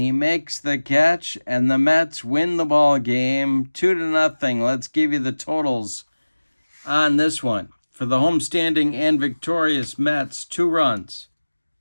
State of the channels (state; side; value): inverted; both; correlation -1.00